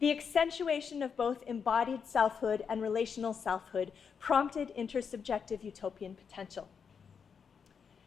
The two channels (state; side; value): quieter; right; 6.5 dB